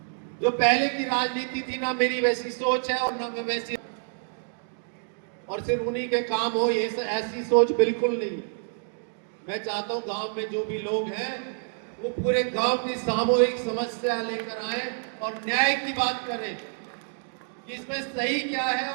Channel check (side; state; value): left; silent; digital silence